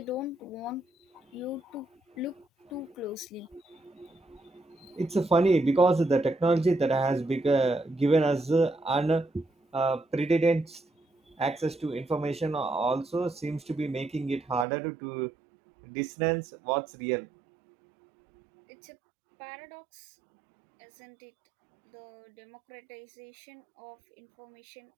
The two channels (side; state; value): left; drops out; at 14.7 s